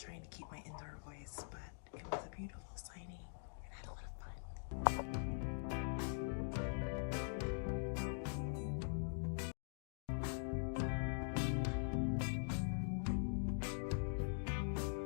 to keep my indoor voice, but it was a beautiful signing and I had a lot of fun.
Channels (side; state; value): right; silent; digital silence